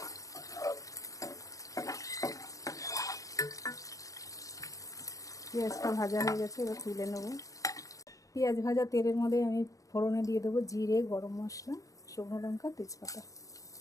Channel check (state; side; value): late; right; 0.16 ms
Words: পেঁয়াজটা ভাজা হয়ে গেছে, এবার তুলে নেব। পেঁয়াজ ভাজা তেলের মধ্যে আমি ফোড়নে দিয়ে দেবো জিরে, গরম মশলা, শুকনো লঙ্কা, তেজপাতা।